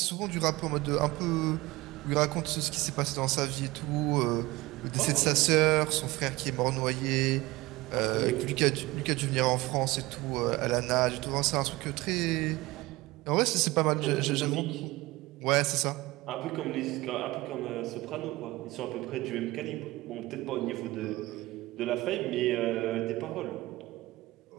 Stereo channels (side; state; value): left; quieter; 20.1 dB